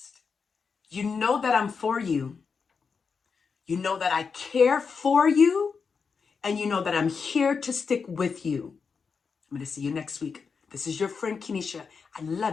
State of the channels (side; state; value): right; quieter; 5.5 dB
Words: You know that I'm for you. You know that I care for you, and you know that I'm here to stick with you. I'm going to see you next week. This is your friend Kenesha. I